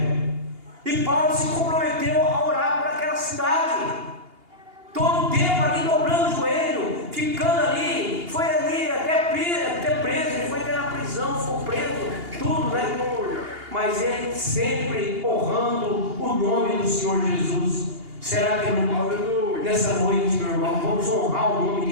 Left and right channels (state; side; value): late; left; 2.8 ms